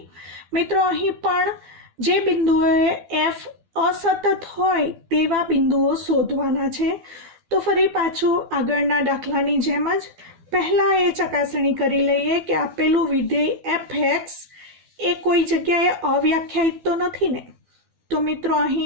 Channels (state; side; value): late; left; 12 ms